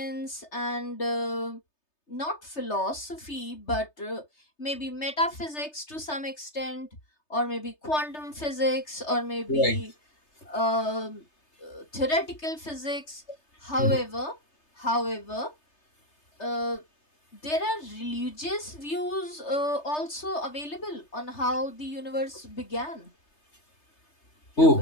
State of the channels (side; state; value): right; late; 3.3 ms